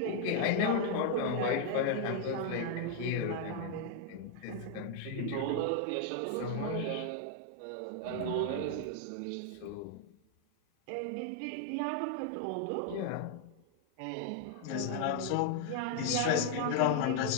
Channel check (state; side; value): different; both; correlation 0.00